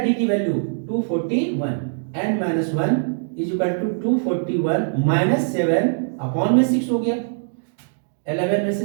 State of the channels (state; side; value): silent; left; digital silence